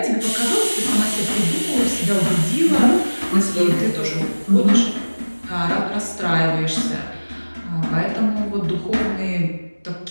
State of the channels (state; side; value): inverted; both; correlation -1.00